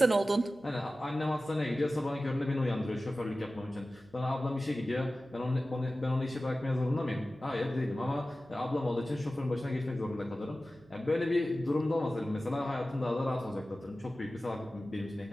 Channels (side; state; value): right; noise; hum, 27 dB below the sound